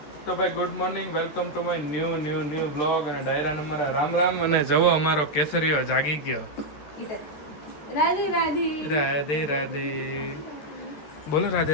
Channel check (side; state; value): right; late; 13 ms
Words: ભાઈ good morning, welcome to my new vlog અને ડાયરા નંબર રામ રામ. અને જવો અમારો કેસરીઓ જાગી ગયો. રાધે રાધે રાધે રાધે બોલો, રાધે